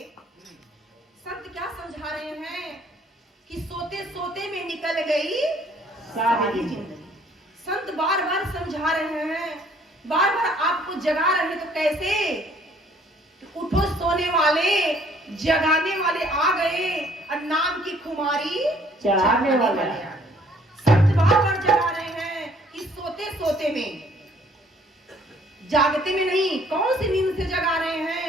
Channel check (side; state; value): both; normal; correlation 0.60